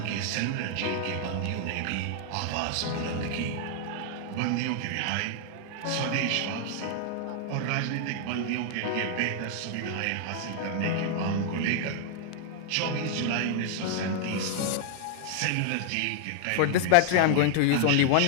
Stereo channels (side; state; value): both; different; correlation 0.00